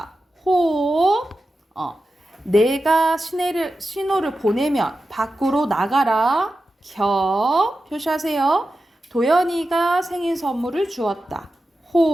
호. 내가 신호를 보내면 밖으로 나가라. 겨. 표시하세요. 도연이가 생일 선물을 주었다.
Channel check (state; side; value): normal; both; correlation 0.92